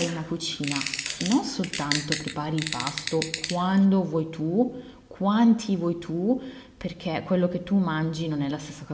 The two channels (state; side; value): identical; both; correlation 1.00